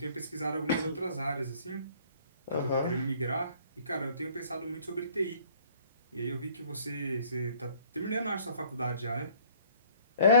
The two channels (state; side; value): inverted; both; correlation -0.57